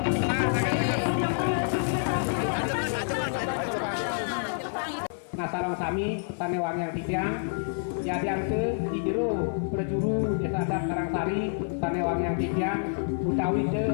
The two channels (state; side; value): silent; right; 59 dB below the other